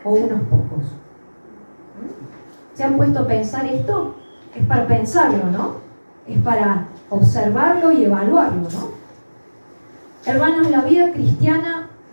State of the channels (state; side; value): inverted; both; correlation -1.00